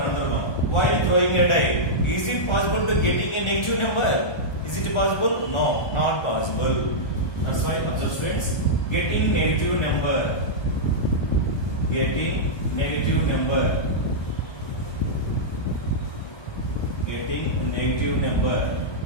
another one. While throwing a die, is it possible to getting a negative number? Is it possible? No, not possible. That's why, observe, students. Getting negative number. Getting negative number. Getting negative number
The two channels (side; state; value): right; late; 1.2 ms